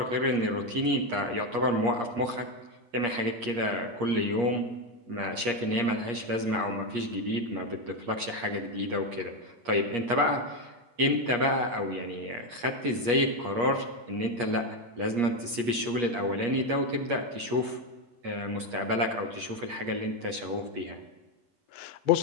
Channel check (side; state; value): left; late; 8.4 ms